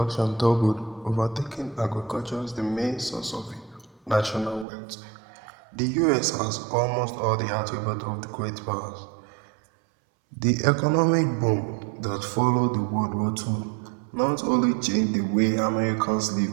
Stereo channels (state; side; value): drops out; left; at 4.7 s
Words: doubled, overtaking agriculture as the main source of national wealth. The US has almost all the attributes of the great powers. The economic boom that followed the World War II not only changed the way Americans